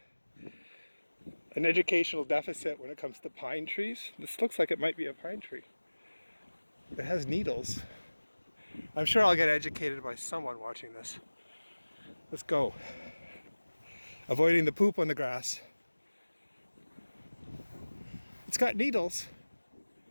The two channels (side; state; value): both; inverted; correlation -1.00